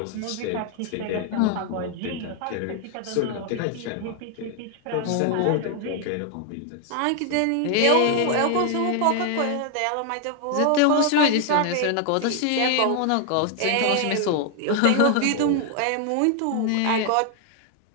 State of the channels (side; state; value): both; different; correlation 0.00